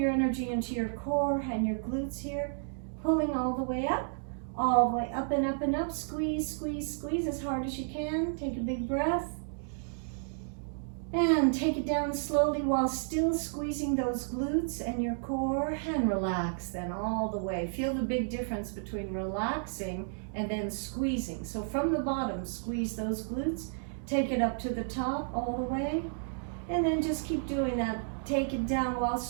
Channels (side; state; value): left; silent; digital silence